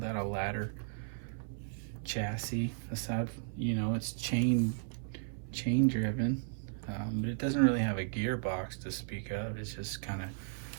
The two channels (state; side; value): silent; left; 54 dB below the other